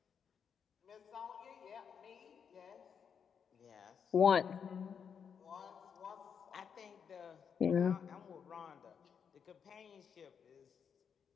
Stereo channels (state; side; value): quieter; right; 7.1 dB